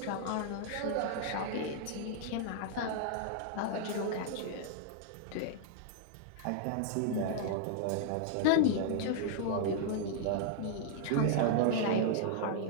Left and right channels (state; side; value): different; both; correlation -0.01